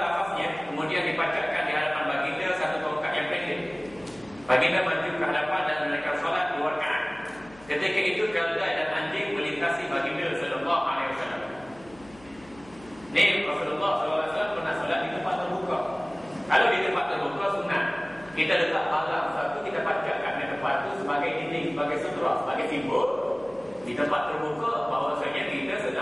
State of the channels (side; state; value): left; noise; hum, 23 dB below the sound